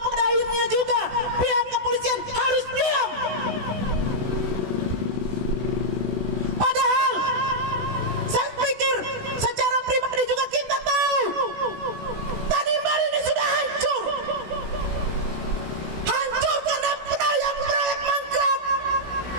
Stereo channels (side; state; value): left; late; 16 ms